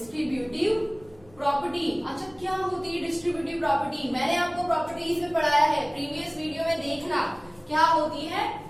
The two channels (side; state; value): left; noise; rumble, 27 dB below the sound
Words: प्रॉपर्टी। अच्छा क्या होती है डिस्ट्रीब्यूटिव प्रॉपर्टी, मैंने आपको प्रॉपर्टीज में पढ़ाया है, प्रीवियस वीडियो में देखना क्या होती है